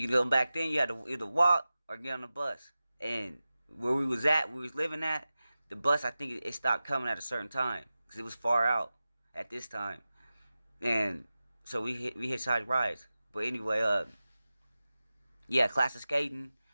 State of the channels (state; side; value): inverted; both; correlation -0.95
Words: go back then, you had to either walk or get on the bus. And where we was living at, the bus I think it stopped coming at a certain time because it was far out at this time. And so we hitchhiked rides. But anyway, yeah, class of skating,